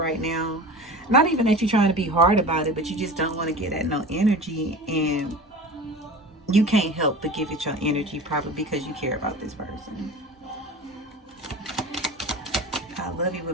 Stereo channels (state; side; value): normal; both; correlation 0.35